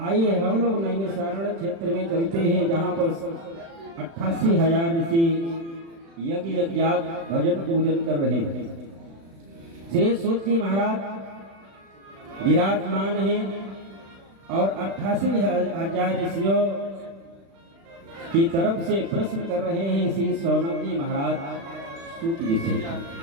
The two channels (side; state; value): left; late; 36 ms